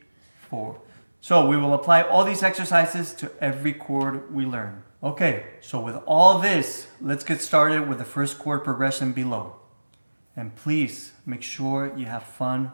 4. So we will apply all these exercises to every chord we learn. Okay, so with all this, let's get started with the first chord progression below. And please make sure you have fun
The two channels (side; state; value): both; inverted; correlation -1.00